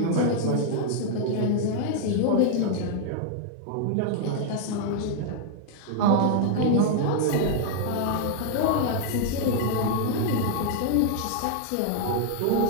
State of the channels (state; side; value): different; both; correlation 0.00